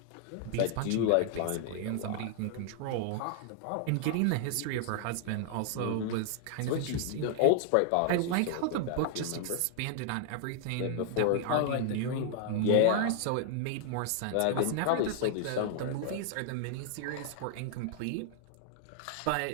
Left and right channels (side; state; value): both; different; correlation 0.00